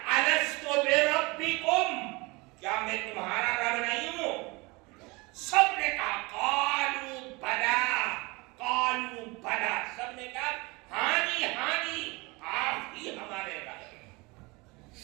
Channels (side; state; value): left; quieter; 25.5 dB